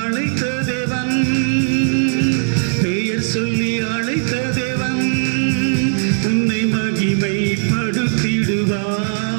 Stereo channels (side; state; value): left; silent; digital silence